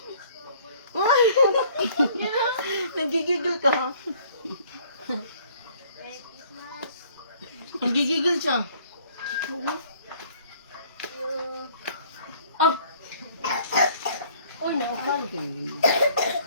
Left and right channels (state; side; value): inverted; both; correlation -0.57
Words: Nagigigil ka. Nagigigil siya. Oh, Uy, naupal.